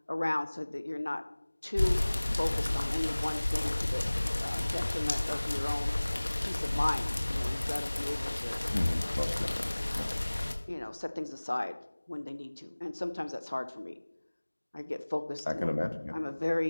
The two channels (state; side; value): inverted; both; correlation -1.00